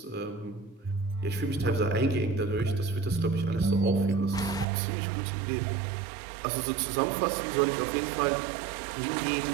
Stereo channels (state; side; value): drops out; left; at 4.7 s